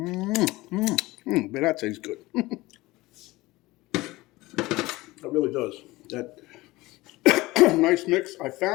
that tastes good. It really does. That nice mix. I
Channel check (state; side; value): quieter; right; 19.9 dB